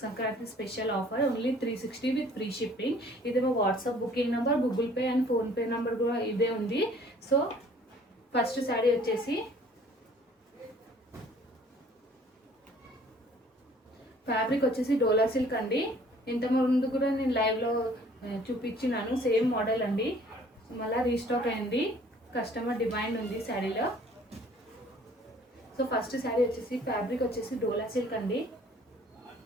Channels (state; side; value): normal; both; correlation 0.55